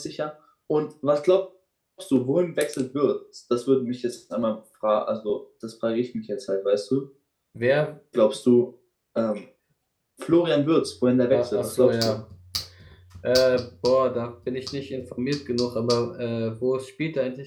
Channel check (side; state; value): both; identical; correlation 1.00